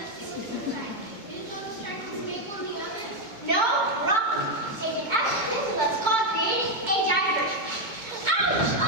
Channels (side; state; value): left; late; 2.2 ms